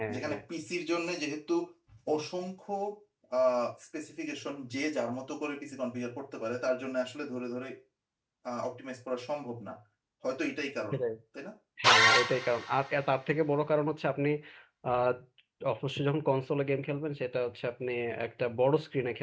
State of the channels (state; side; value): identical; both; correlation 1.00